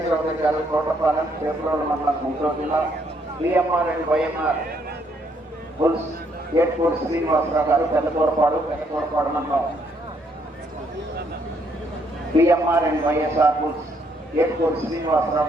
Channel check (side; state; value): both; normal; correlation 0.70